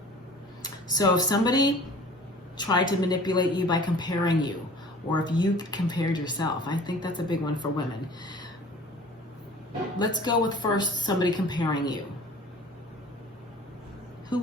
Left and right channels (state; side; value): normal; both; correlation 0.46